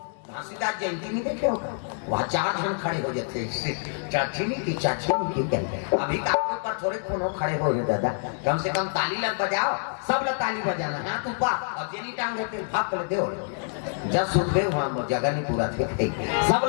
घासीदास जयंती नहीं देखे होगा वहाँ 4 जन खड़े हो जाते चाची नहीं की कहते अभी काफी पर थोड़े कोनो खड़े हो गए दादा कम से कम ताली लग बजाओ सब लोग ताली बजाना हाथ ऊपर और जेनी टांग देते भाग कर दो जब सुन गए वहाँ जगह नहीं पूरा थे सब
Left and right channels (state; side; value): silent; right; 60 dB below the other